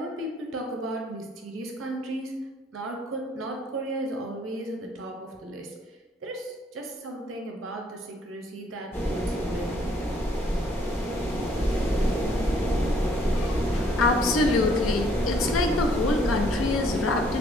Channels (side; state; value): both; normal; correlation 0.64